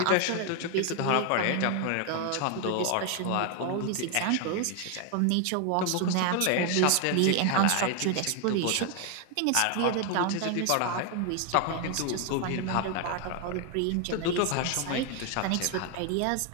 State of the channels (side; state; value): both; different; correlation 0.00